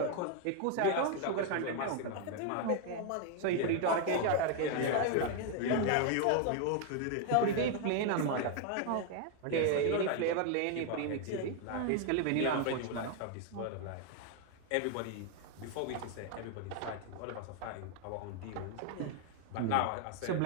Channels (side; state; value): both; different; correlation 0.01